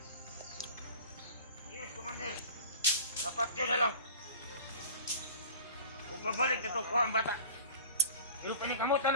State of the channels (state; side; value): inverted; both; correlation -0.40